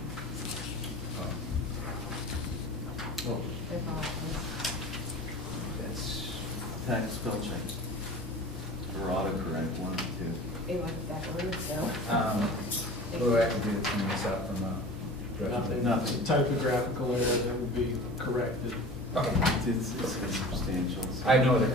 Oh, I apologize. That's, Tax spell check. Or autocorrect, one of the two. It was backwards, so. what do I have to do to clean this up from Nothing, Nothing. it's a typographical error that will be corrected. Okay. It's substantial. So. I have no other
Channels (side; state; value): both; normal; correlation 0.38